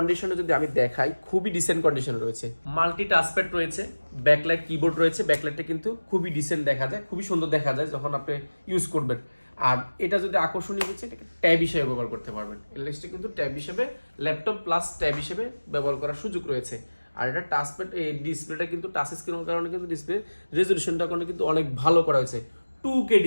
যদি আমি দেখাই, খুবই ডিসেন্ট কন্ডিশনে রয়েছে, মাল্টি টাচপ্যাড রয়েছে, ব্যাকলাইট, কিবোর্ড রয়েছে, ব্যাকলাইটটা কিন্তু খুবই ডিসেন্ট দেখা যায়, খুবই সুন্দর দেখা যায় যখন আপনি ইউজ করবেন। আর এটা যদি আকর্ষণীয় হচ্ছে, এটাকে ট্যাব হিসেবে ব্যবহার করতে পারবেন, এলএসটা কিন্তু ট্যাব হিসেবে, ল্যাপটপ প্লাস ট্যাব হিসেবে ব্যবহার করার সুযোগ রয়েছে। আর এটা টাচপ্যাড, এই ডিসপ্লেটা কিন্তু টাচ স্ক্রিনের কারণে কিন্তু ডিসপ্লে রেজলিউশনটা কিন্তু অনেক ভালো করা হয়েছে, 2K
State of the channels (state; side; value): inverted; both; correlation -1.00